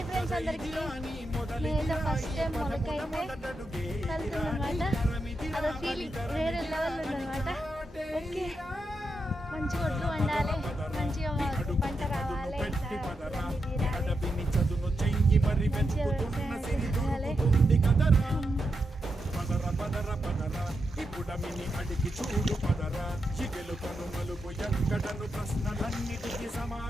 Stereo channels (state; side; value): normal; both; correlation 0.85